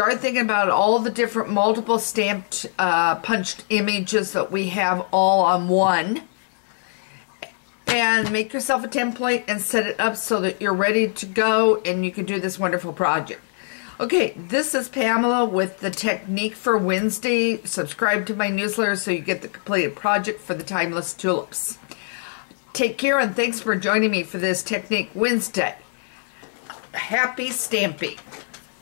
thinking about all the different multiple stamped punched images that we have all on one, and make yourself a template and set it up so that you're ready to go and you can do this wonderful project. Okay, this is Pamela with the Technique for Wednesday. Subscribe to my newsletter so you get the completed project for the Timeless Tulips. Take care and thanks for joining me for this Technique Wednesday. Happy stamping.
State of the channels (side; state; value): right; silent; digital silence